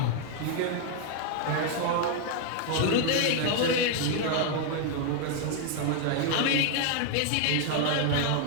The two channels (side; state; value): both; different; correlation 0.00